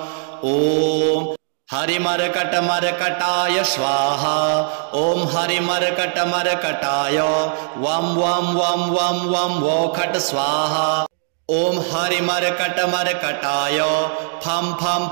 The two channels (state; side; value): silent; left; digital silence